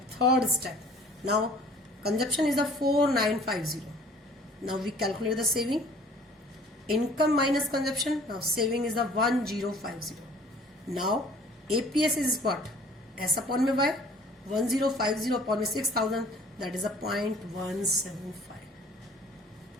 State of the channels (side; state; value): both; normal; correlation 0.52